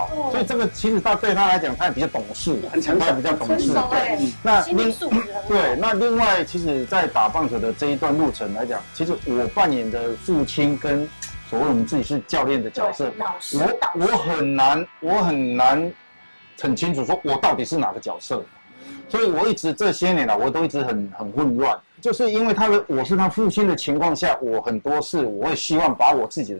所以这个其实对他来讲，他也比较懂事，很成熟，比较懂事。那心理素质对，那另外，其实，在打棒球的这一段路程来讲，其实我扮演的父亲跟所谓我们自己是教练的角色，我很难很清楚说我到底是哪个角色，所以我一直这些年来我都一直很混乱，就是因为我是他父亲的情况下，我很多事我会希望把我自己的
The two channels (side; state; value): both; inverted; correlation -1.00